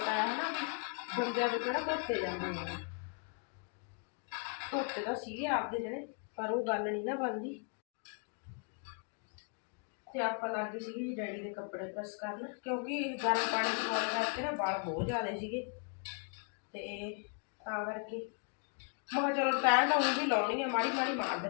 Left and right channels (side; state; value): right; quieter; 39.1 dB